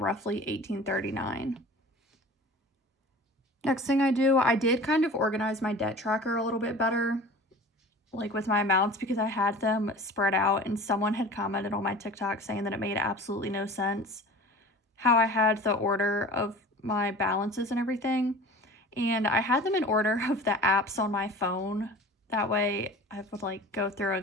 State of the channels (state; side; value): normal; both; correlation 0.41